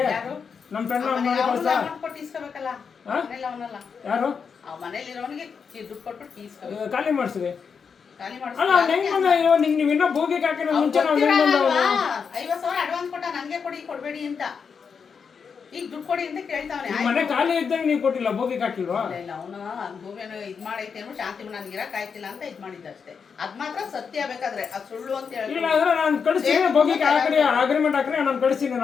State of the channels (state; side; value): quieter; right; 6.1 dB